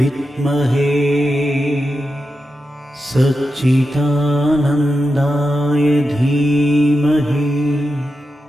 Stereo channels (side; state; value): both; normal; correlation 0.89